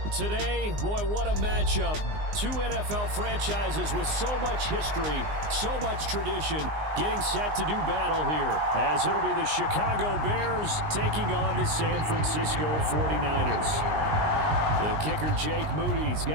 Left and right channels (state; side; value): late; left; 19 ms